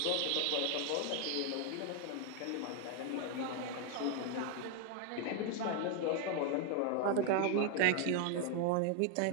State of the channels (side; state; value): both; different; correlation 0.00